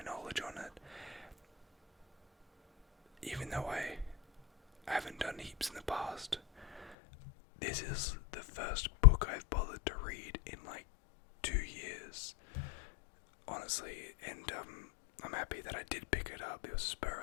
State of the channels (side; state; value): right; drops out; at 6.9 s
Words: knowledge on it. Even though I haven't done heaps in the past, this is the first book I've bothered to read in like 2 years, honestly, and I'm happy that I did pick it up. It was a spur